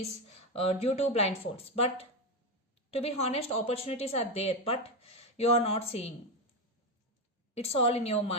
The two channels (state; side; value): normal; both; correlation 0.11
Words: due to blindfolds. But to be honest, opportunities are there, but you are not seeing. It's all in your